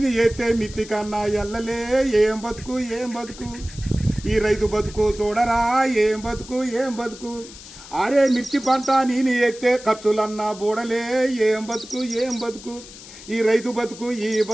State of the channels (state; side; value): noise; left; hiss, 17 dB below the sound